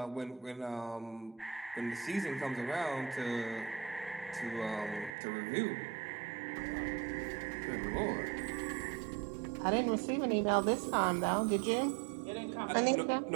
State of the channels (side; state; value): left; drops out; at 5.2 s